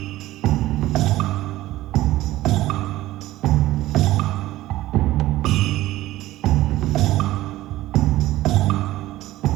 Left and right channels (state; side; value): quieter; left; 16.1 dB